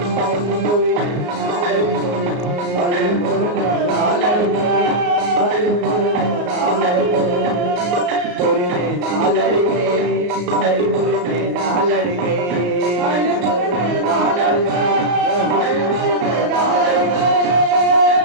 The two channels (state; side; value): late; left; 34 ms